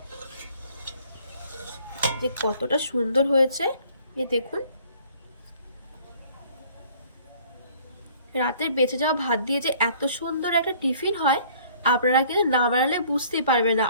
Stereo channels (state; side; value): inverted; both; correlation -0.56